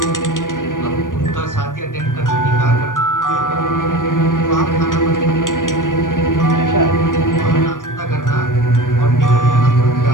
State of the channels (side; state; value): right; late; 0.88 ms